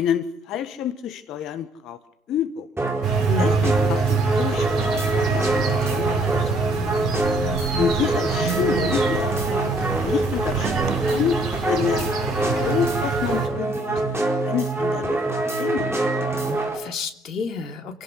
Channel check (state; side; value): normal; both; correlation 0.63